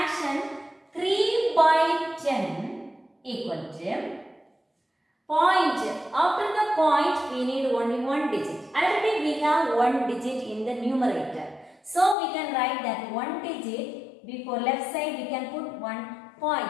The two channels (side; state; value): right; drops out; at 12.2 s